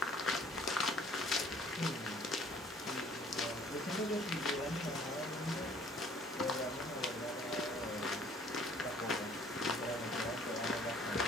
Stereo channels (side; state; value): both; normal; correlation 0.57